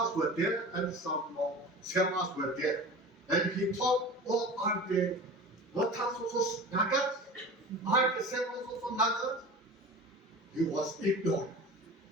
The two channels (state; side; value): normal; both; correlation 0.35